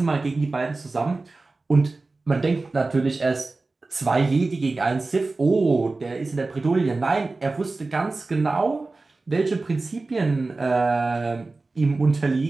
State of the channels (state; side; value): quieter; left; 3.5 dB